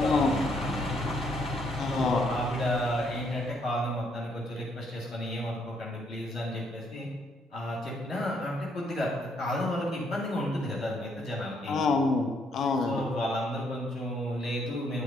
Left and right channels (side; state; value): both; normal; correlation 0.71